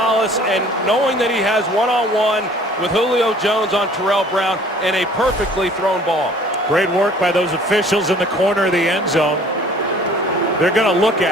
and knowing that he has one-on-one with Julio Jones on Terrell Brown and a perfectly thrown ball. Great work by those officials in the corner of the end zone. They're going to look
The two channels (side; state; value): both; normal; correlation 0.52